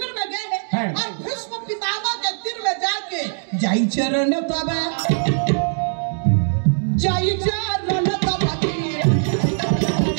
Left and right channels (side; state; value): left; silent; 61 dB below the other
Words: में गए और भीष्म पितामह के तीर में जाके जाई चरण तब जाई चरण तब